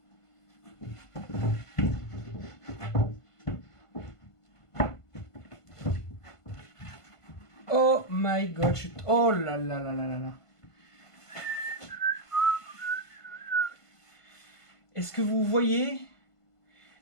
Oh my god, oh là là là là là là. Est-ce que vous voyez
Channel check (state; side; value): late; right; 1.5 ms